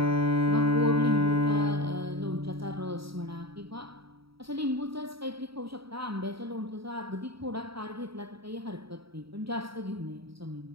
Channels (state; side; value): late; left; 0.75 ms